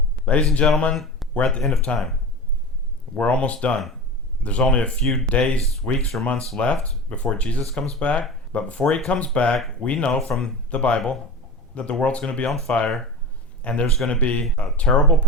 Ladies and gentlemen, we're at the end of time. We're almost done. There's only a few days, weeks, or months left before Jesus comes back. But before he comes back, we know from the Bible that the world's going to be on fire, and there's going to be a terrible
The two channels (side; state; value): both; normal; correlation 0.30